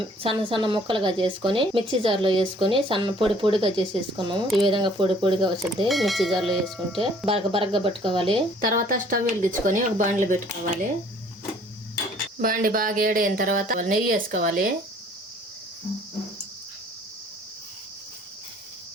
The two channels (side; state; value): both; normal; correlation 0.57